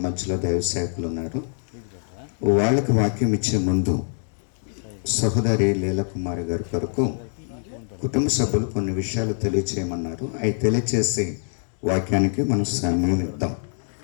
మధ్యలో దైవ సేవకులు ఉన్నారు. వాళ్ళకి వాక్యం ఇచ్చే ముందు సహోదరి లీలాకుమారి గారి కొరకు కుటుంబ సభ్యులు కొన్ని విషయాలు తెలియచేయమన్నారు. అవి తెలియచేసి వాక్యానికి మనం సమయం ఇద్దాం.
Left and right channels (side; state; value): right; silent; 62 dB below the other